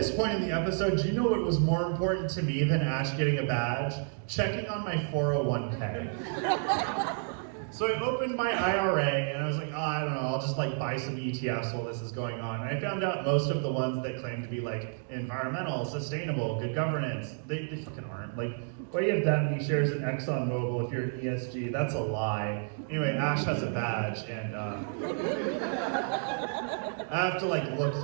point in the episode, do you know what was more important to me than Ash getting a badge? Checking on my 401k. So I opened my IRA and I was like, oh, I don't know, I'll just like buy some ETFs while this is going on. And I found out most of the ones that claim to be like environmental, sustainable, good governance, they fucking aren't. Like, why do you have that many shares in ExxonMobil if you're an ESG? That's a lie. Anyway, Ash has a badge and I have to like look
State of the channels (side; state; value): left; silent; 57 dB below the other